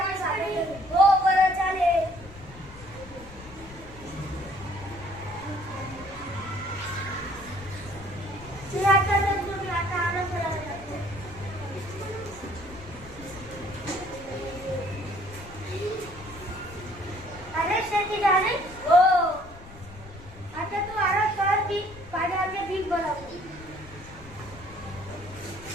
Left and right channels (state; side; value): noise; left; rumble, 17 dB below the sound